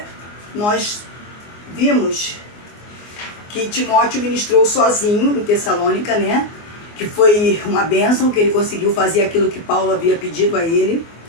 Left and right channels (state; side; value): late; right; 24 ms